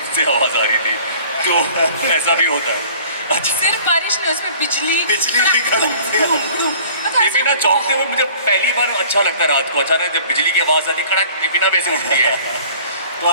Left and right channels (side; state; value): both; inverted; correlation -0.49